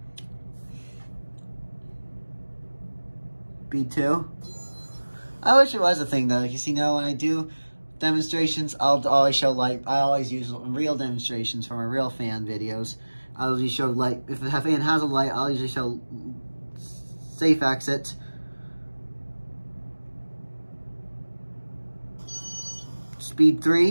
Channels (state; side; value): inverted; both; correlation -1.00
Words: Speed 2. I wish it was a thing though, because when I do demonstrations, I'll always show light. I always use real demonstrations for my real fan videos. I'll usually show light. If the fan has a light, I'll usually show safe exit. Speed